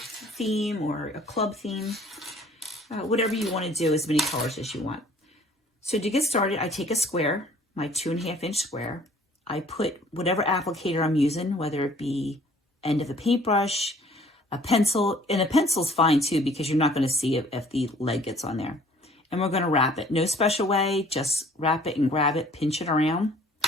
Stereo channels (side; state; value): both; normal; correlation 0.55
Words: theme or a club theme. Whatever you want to do, as many colors as you want. So to get started, I take a square, my 2.5-inch square. I put whatever applicator I'm using, whether it be end of a paintbrush, a pencil, and a pencil's fine too because you're not going to see it if the leg gets on there. And we're going to wrap it. No special way, just wrap it and grab it, pinch it around,